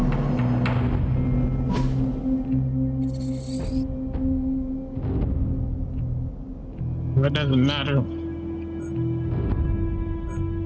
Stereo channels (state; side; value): identical; both; correlation 1.00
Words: It doesn't matter.